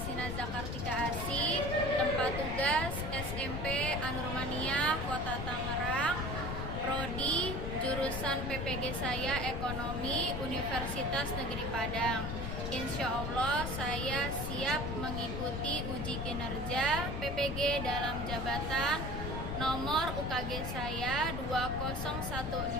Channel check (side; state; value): left; noise; rumble, 3 dB below the sound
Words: Zakartika Asih, tempat tugas SMP Anurmania Kota Tangerang, Prodi jurusan PPG saya Ekonomi Universitas Negeri Padang. Insya Allah saya siap mengikuti uji kinerja PPG dalam jabatan. Nomor UKG saya